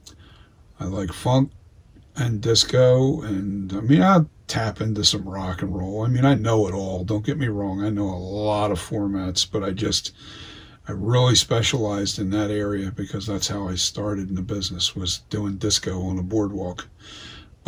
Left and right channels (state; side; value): identical; both; correlation 1.00